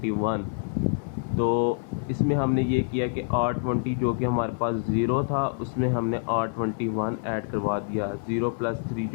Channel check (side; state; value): right; silent; digital silence